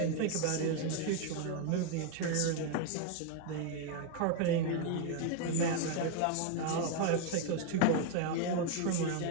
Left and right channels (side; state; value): both; different; correlation 0.01